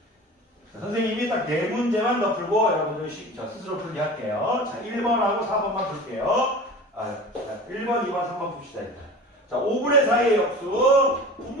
선생님이 딱 4문제만 더 풀고 여러분들 스스로 풀게 할게요. 자, 1번하고 4번만 풀게요. 1번, 2번, 3번 풉시다. 일단. 자, 5분의 4의 역수,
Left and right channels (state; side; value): normal; both; correlation 0.37